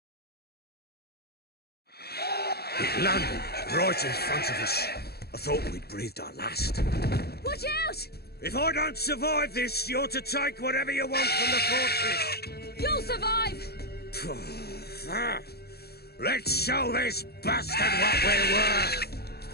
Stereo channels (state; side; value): late; right; 0.46 ms